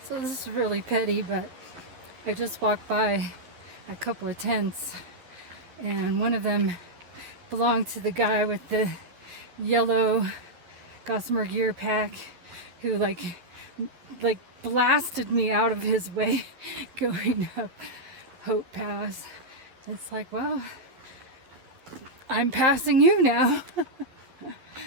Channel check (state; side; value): late; left; 11 ms